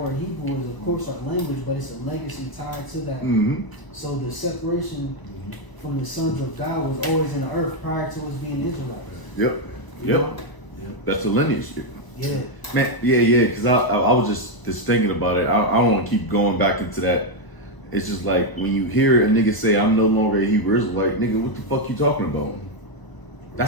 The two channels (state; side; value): late; right; 1.0 ms